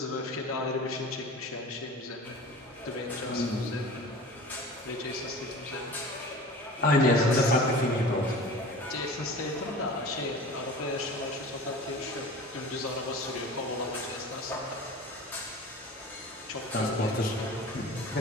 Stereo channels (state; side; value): normal; both; correlation 0.38